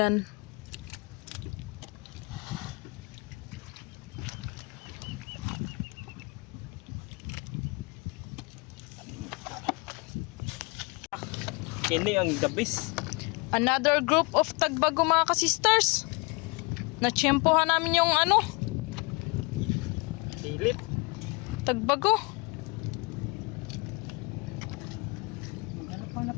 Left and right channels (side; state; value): right; quieter; 29.0 dB